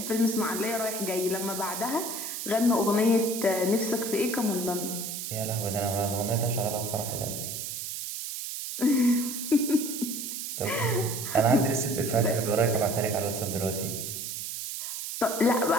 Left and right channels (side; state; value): right; noise; hiss, 5 dB below the sound